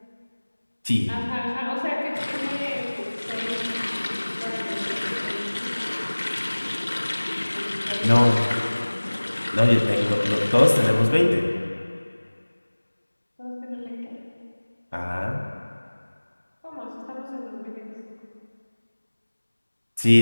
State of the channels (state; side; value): inverted; both; correlation -1.00